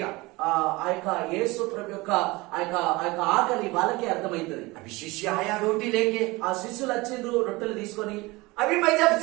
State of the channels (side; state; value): left; quieter; 22.5 dB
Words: ఆ యొక్క యేసు ప్రభు యొక్క ఆ యొక్క ఆకలి వాళ్ళకే అర్థమైతది. अभी शिष्य आया रोटी लेके। ఆ శిష్యులు వచ్చిండ్రు రొట్టెలు తీసుకొని. अभी मैं जब